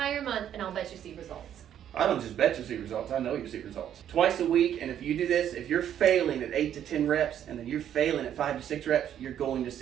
month, and I'll bet you see results. I don't just bet you see results, I know you see results. Twice a week, and if you do this, if you're failing at 8 to 10 reps, and then you're failing at 5 to 6 reps, you're going to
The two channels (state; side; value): quieter; left; 10.1 dB